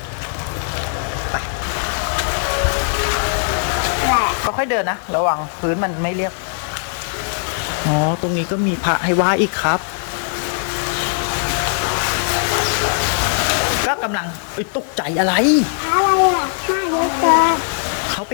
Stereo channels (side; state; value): right; silent; digital silence